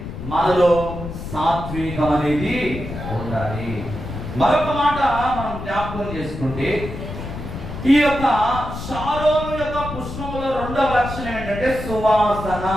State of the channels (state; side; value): noise; left; rumble, 8 dB below the sound